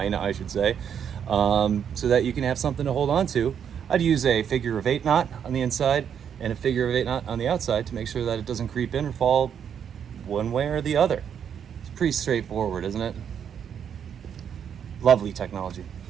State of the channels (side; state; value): left; quieter; 8.2 dB